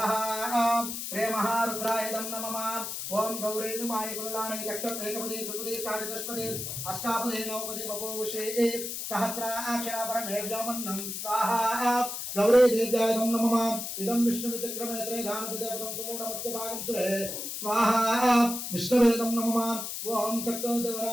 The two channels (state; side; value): noise; left; hiss, 5 dB below the sound